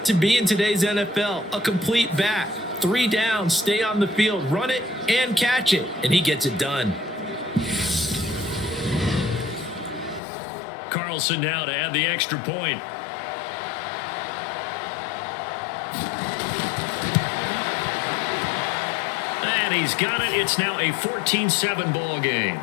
to be in today's NFL, a complete back. 3 downs, stay on the field, run it, and catch it. And he gets it done. Carlson now to add the extra point. And he's got it. It's now a 14-7 ball game.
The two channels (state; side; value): drops out; right; at 10.2 s